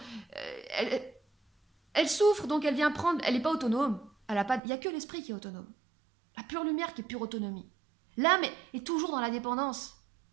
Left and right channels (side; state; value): left; drops out; at 4.6 s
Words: Elle souffre, donc elle vient prendre... Elle n'est pas autonome. Il n'y a que l'esprit qui est autonome. La pure lumière qui est pure autonomie. L'âme est toujours dans la dépendance.